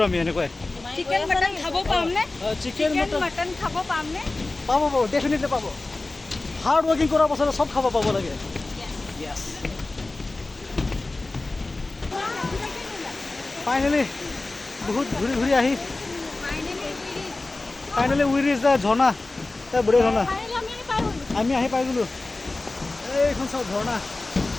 আমি এনেকৈ চিকেন মটন খাব পামনে চিকেন মটন খাব পামনে পাব ডেফিনেটলি পাব হাৰ্ড ওয়াৰ্কিং কৰাৰ পাছত সব খাব পাব লাগে यस फाइनली बहुत घूरी घूरी आही फाइनली वी रिच द झरना ता बड़े झरना आमी आही पाइ गलो এইখন সব ঝর্ণা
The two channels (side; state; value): right; quieter; 3.2 dB